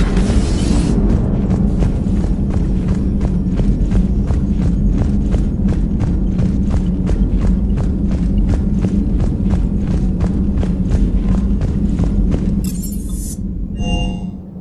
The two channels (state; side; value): identical; both; correlation 1.00